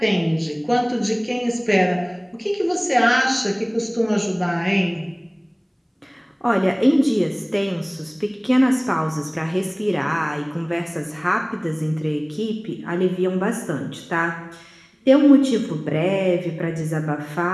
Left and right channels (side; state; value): both; identical; correlation 1.00